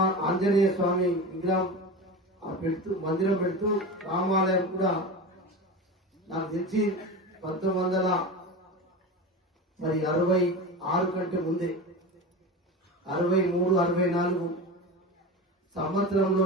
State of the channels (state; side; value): normal; both; correlation 0.27